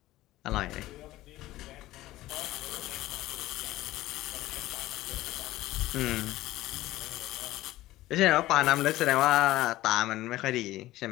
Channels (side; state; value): right; quieter; 16.4 dB